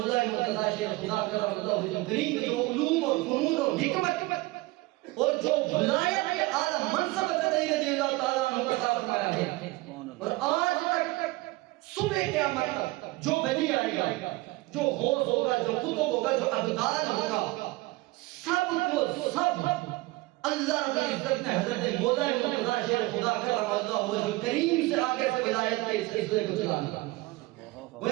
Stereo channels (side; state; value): left; quieter; 21.2 dB